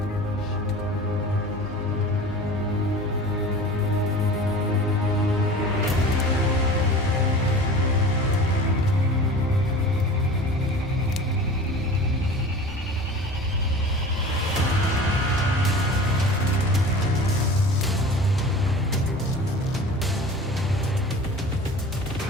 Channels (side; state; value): both; normal; correlation 0.39